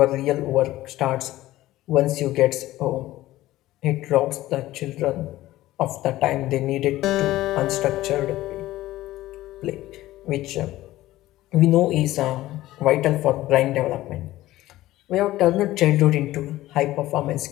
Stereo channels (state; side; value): quieter; right; 16.1 dB